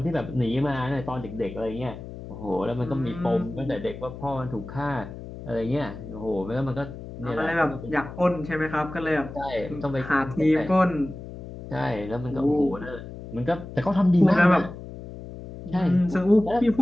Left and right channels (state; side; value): noise; left; hum, 12 dB below the sound